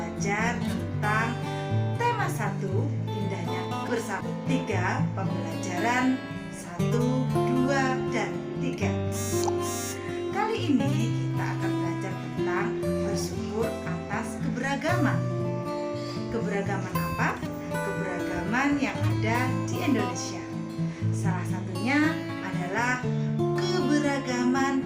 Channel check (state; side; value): identical; both; correlation 1.00